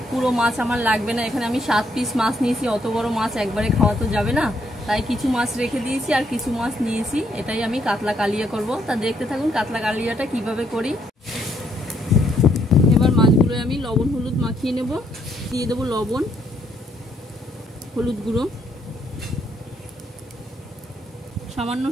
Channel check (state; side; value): normal; both; correlation 0.72